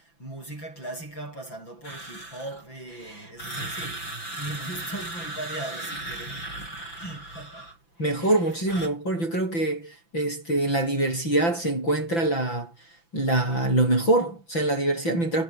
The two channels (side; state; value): right; late; 5.9 ms